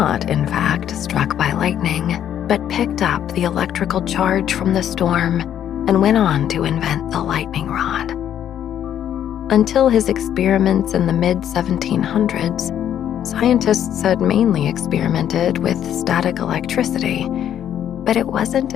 in fact, struck by lightning, but picked up the electrical charge from the storm and went on to invent the lightning rod. Until his experiments in the mid-1700s, scientists had mainly experimented with static electricity, but it wasn't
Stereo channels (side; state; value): right; quieter; 10.2 dB